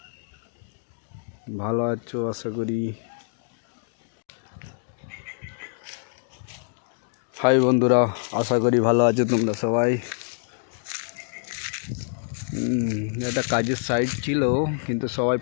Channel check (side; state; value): right; silent; digital silence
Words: ভালো আছো আশা করি। ভালো আছো তোমরা সবাই। এটা কাজের সাইট ছিল, কিন্তু সবাই